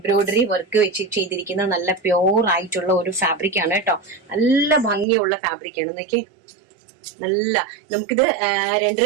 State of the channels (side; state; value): left; drops out; at 5.1 s